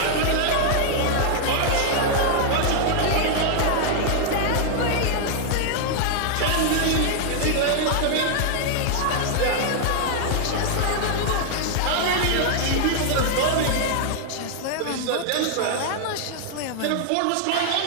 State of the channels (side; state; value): both; different; correlation -0.01